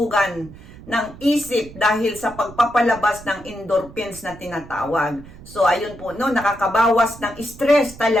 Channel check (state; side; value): noise; right; rumble, 18 dB below the sound